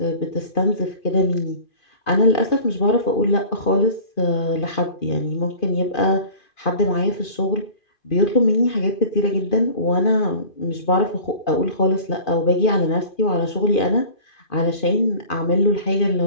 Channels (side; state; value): right; late; 2.5 ms